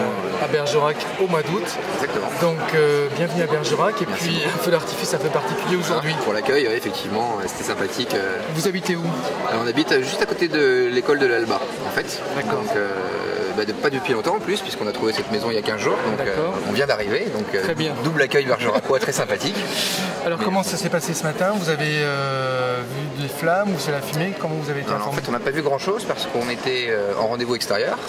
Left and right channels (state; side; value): identical; both; correlation 1.00